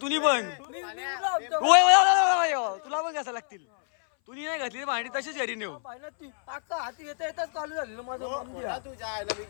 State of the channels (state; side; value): silent; right; 59 dB below the other